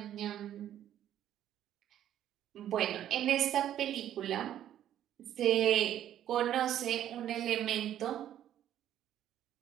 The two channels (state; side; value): quieter; left; 11.2 dB